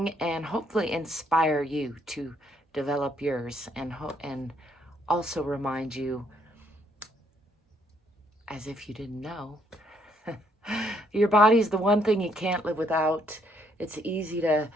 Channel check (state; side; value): normal; both; correlation 0.70